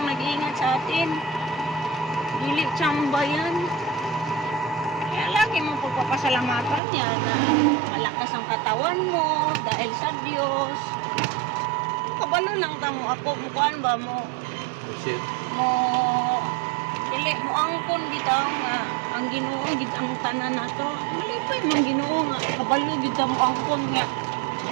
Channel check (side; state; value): left; drops out; at 6.8 s